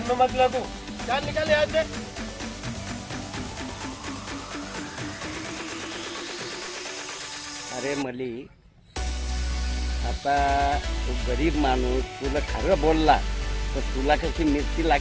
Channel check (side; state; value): both; identical; correlation 1.00